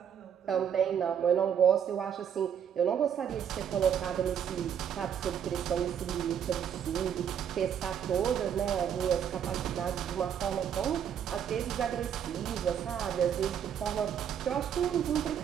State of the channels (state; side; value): quieter; left; 8.6 dB